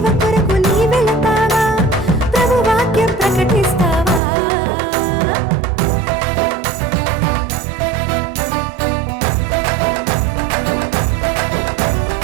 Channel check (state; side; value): drops out; left; at 4.2 s